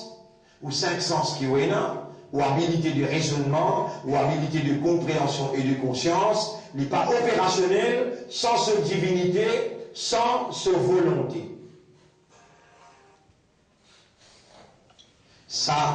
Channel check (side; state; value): both; identical; correlation 1.00